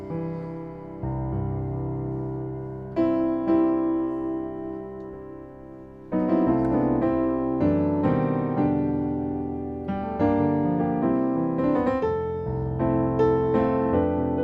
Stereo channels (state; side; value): identical; both; correlation 1.00